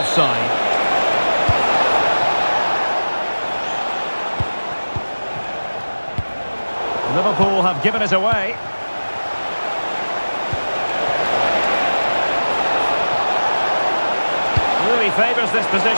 Liverpool have given it away. Really favours this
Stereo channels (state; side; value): inverted; both; correlation -1.00